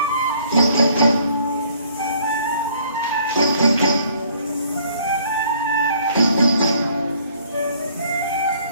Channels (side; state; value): both; inverted; correlation -0.60